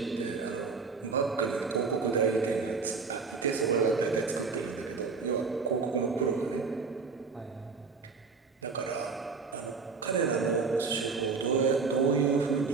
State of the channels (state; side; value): quieter; left; 4.8 dB